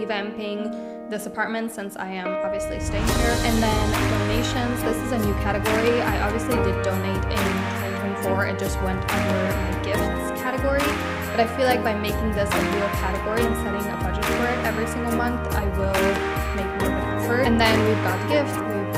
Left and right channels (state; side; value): identical; both; correlation 1.00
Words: this apartment since I am obviously staying here. And then donations. This is a new category. I obviously did donate in 2024. It just went under my gifts category. But I feel like by making this a real category and setting a budget for it every single month, I will make more of an effort. And then we've got gift, we've